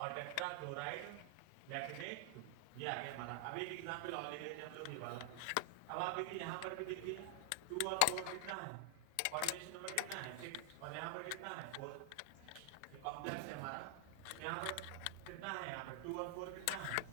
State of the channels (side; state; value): both; different; correlation 0.00